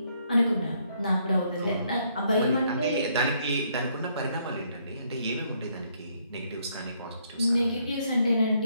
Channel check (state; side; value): inverted; both; correlation -0.70